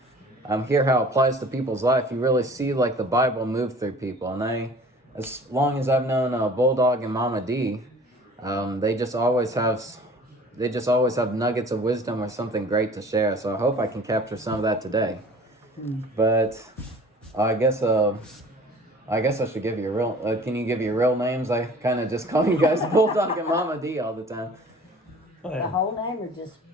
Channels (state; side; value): normal; both; correlation 0.47